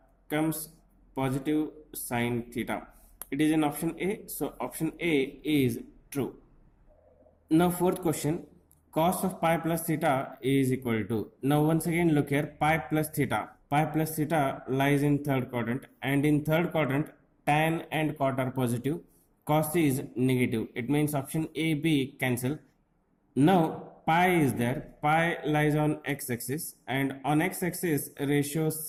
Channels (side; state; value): both; identical; correlation 1.00